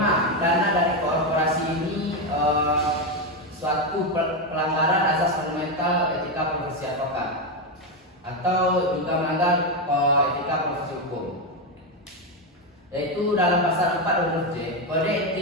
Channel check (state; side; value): normal; both; correlation 0.08